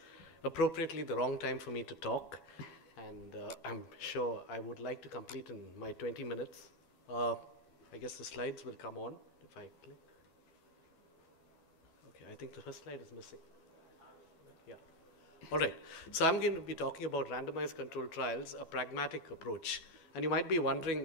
appropriately the wrong time for me to talk. And I'm sure I would like to complete in my 20 minutes. I guess the slides will come on if I click. Okay, I think the first slide is missing. Yeah. All right. So I'm going to be talking about randomized controlled trials, a pragmatic approach. And you might be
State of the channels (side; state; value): right; late; 12 ms